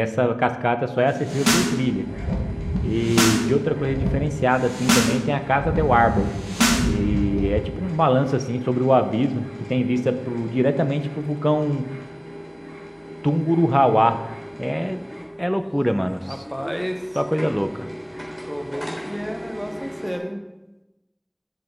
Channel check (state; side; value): identical; both; correlation 1.00